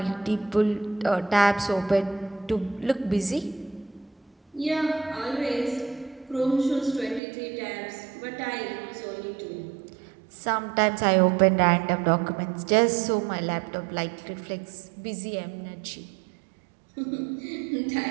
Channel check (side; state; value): left; drops out; at 7.2 s